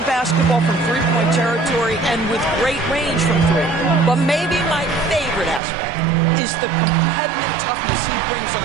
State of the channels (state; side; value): drops out; left; at 5.6 s